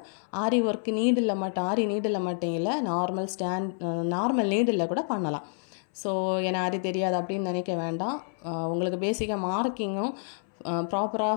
ஆரி ஒர்க் நீடில் மட்டும் ஆரி நீடில் மட்டும் இல்லை நார்மல் நீடில் கூட பண்ணலாம். ஸோ எனக்கு ஆரி தெரியாது அப்படின்னு நினைக்க வேண்டாம். உங்களுக்கு பேசிக்காக மார்க்கிங்கும் ப்ராப்பராக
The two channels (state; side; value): silent; right; 59 dB below the other